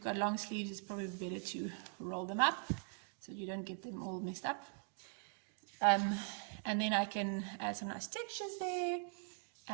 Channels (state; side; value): silent; left; 50 dB below the other